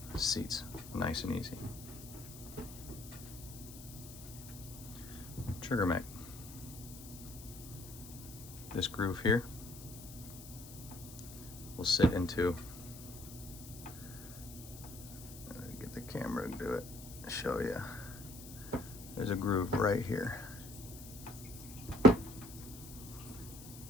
Seats, nice and easy. Trigger mag. This groove here will sit into, get the camera to do it, show you. There's a groove right here.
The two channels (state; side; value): noise; left; hiss, 15 dB below the sound